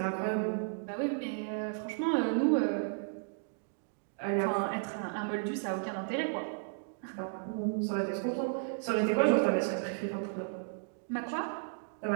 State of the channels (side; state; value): left; silent; digital silence